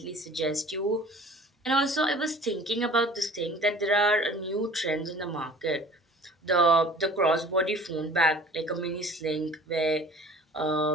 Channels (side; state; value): both; normal; correlation 0.47